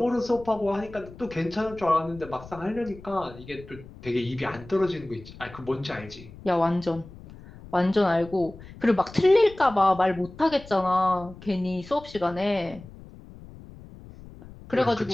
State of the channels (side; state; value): left; noise; rumble, 18 dB below the sound